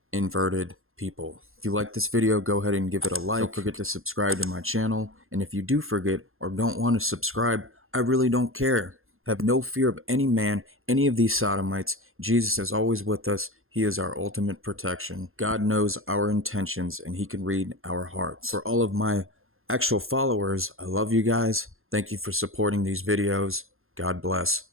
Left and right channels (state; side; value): late; left; 0.61 ms